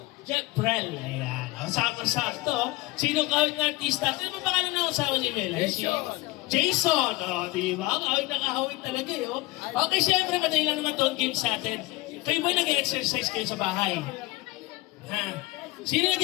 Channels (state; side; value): quieter; right; 20.6 dB